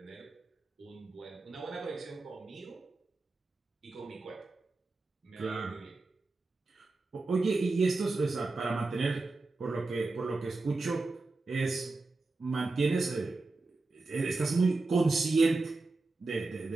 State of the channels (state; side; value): quieter; left; 3.5 dB